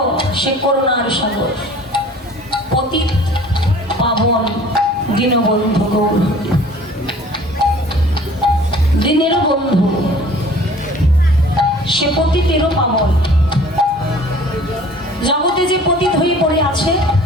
সে করুণার সাগর। পতিত পাবন দীনবন্ধু গৌর, দিনেরও বন্ধু, সে পতিতেরও পাবন। জগতে যে পতিত হয়ে পড়ে আছে,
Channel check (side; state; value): both; normal; correlation 0.49